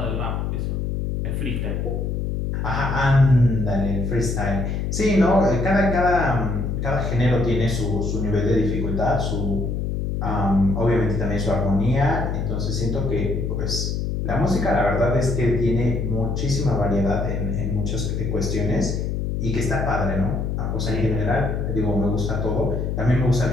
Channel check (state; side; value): noise; left; hum, 1 dB below the sound